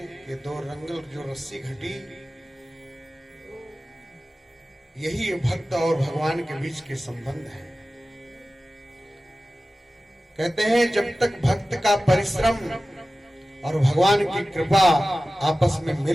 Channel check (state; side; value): normal; both; correlation 0.95